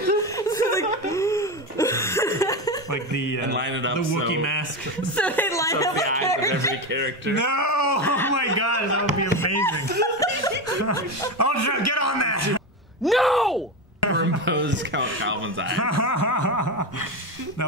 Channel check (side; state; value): both; normal; correlation 0.17